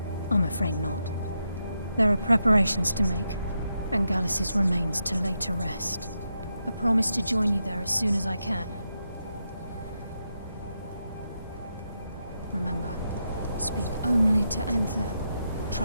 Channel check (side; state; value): both; inverted; correlation -0.84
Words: I'm afraid not. There are preparations to make, and Gallus's remains to lay to rest. I promise to join you there as soon as I can. Remember, speak only to Enther.